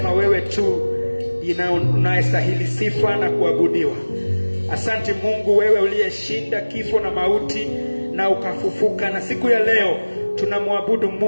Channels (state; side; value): inverted; both; correlation -1.00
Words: wewe tu unayestahili sifa na kuabudiwa. Asante Mungu, wewe uliyeshinda kifo na mauti na ukafufuka, na siku ya leo tunamwabudu